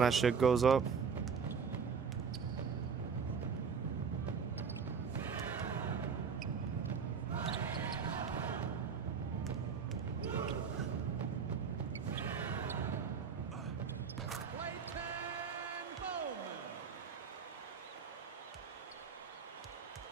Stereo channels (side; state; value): left; quieter; 6.1 dB